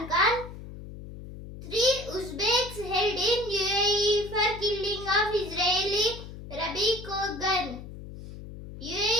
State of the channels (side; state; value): left; noise; hum, 13 dB below the sound